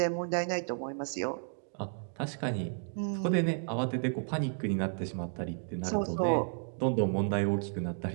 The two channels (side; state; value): left; silent; 56 dB below the other